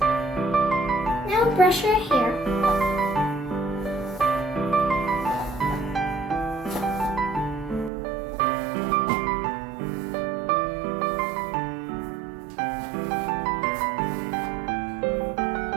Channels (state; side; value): drops out; left; at 7.9 s